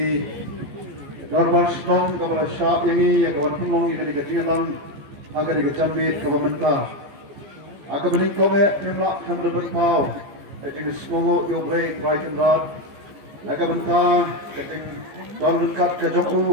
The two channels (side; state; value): left; late; 14 ms